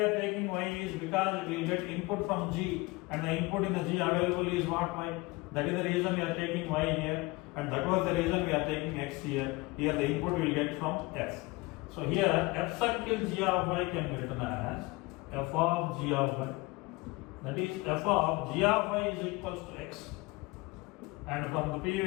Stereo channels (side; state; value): right; quieter; 23.4 dB